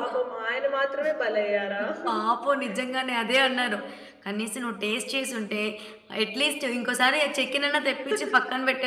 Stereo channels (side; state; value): both; identical; correlation 1.00